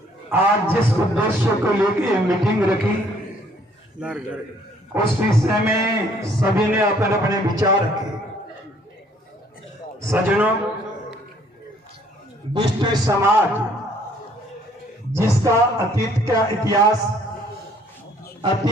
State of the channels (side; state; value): both; normal; correlation 0.62